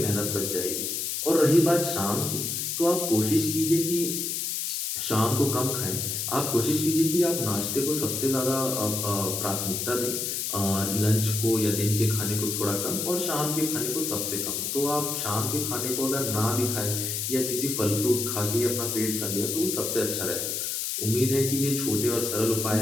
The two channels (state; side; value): noise; left; hiss, 2 dB below the sound